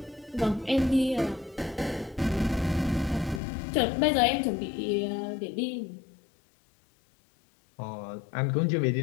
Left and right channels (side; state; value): right; drops out; at 3.4 s